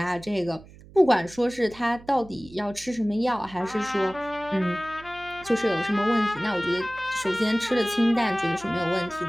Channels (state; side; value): noise; right; hum, 21 dB below the sound